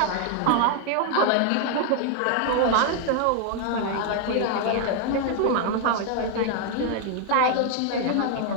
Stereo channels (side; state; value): both; different; correlation 0.00